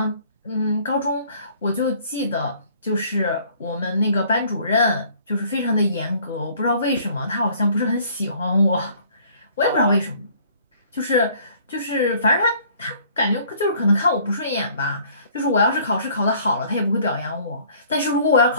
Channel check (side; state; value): both; inverted; correlation -0.57